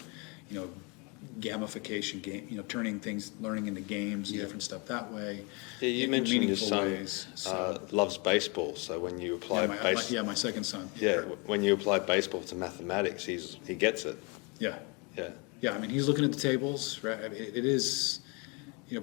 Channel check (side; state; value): right; quieter; 30.9 dB